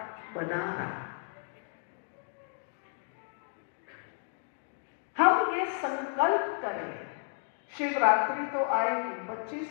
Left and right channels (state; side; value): silent; right; digital silence